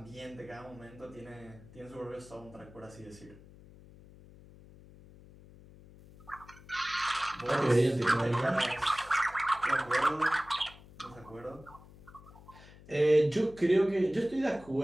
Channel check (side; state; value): left; noise; hum, 21 dB below the sound